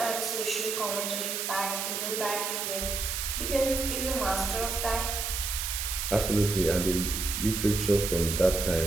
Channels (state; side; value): noise; right; hiss, 2 dB below the sound